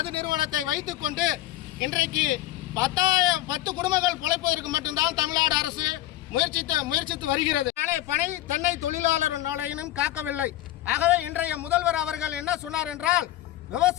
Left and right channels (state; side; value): quieter; right; 14.7 dB